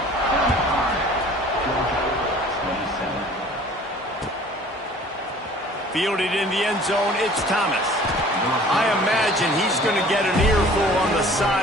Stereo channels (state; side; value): normal; both; correlation 0.49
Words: Fielded in the end zone, it's Thomas. I imagine he's going to get an earful on the